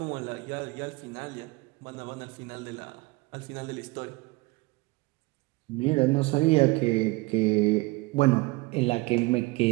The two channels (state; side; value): quieter; left; 23.2 dB